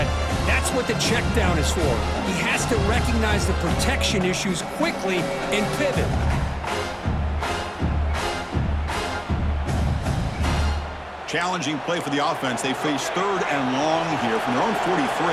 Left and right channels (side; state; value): both; identical; correlation 1.00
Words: that's what the check down is for. He has to recognize the protection issues quickly and pivot. Challenging play for the offense. They face third and long here from their own